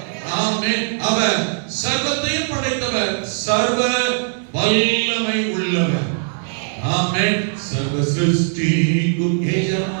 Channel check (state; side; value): silent; left; 63 dB below the other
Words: ஆமென். அவர் சர்வத்தையும் படைத்தவர், சர்வ வல்லமை உள்ளவர். ஆமென். சர்வ சிருஷ்டிக்கும்